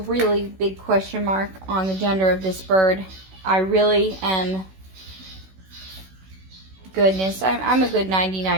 big question mark on the gender of this bird. I really am, goodness, I'm a good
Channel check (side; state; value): left; late; 16 ms